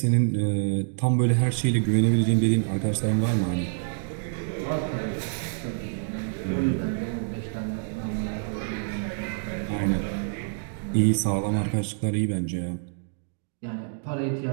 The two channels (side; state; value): left; silent; digital silence